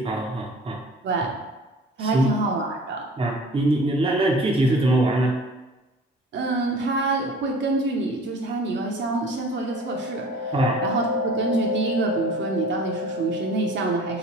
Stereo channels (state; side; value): normal; both; correlation 0.44